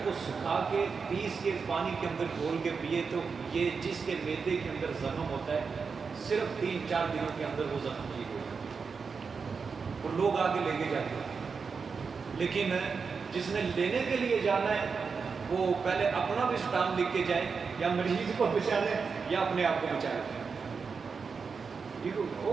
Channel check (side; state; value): left; quieter; 5.3 dB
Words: کو سکھا کے پیس کے پانی کے اندر گھول کے پیے تو یہ جس کے میدے کے اندر زخم ہوتا ہے صرف 3-4 دنوں کے اندر وہ زخم ٹھیک ہو جاتا ہے اور لوگ آگے لے کے جاتے ہیں۔ لیکن جس نے لینے کے لیے جانا ہے وہ پہلے اپنا بھی اسٹام لکھ کے جائے، یا مریض کو بچا لے یا اپنے آپ کو بچا لے۔